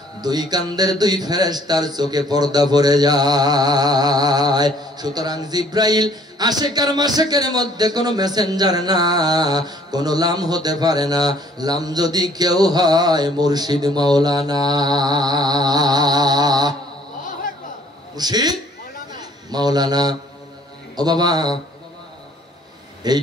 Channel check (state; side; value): normal; both; correlation 0.59